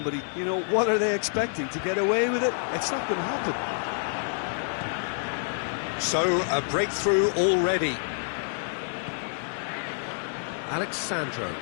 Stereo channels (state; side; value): silent; right; digital silence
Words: you know, what are they expecting? To get away with it? It's not going to happen. So, a breakthrough already. Alexandro.